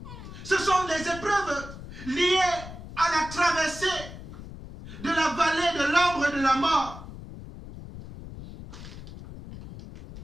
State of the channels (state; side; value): noise; left; rumble, 13 dB below the sound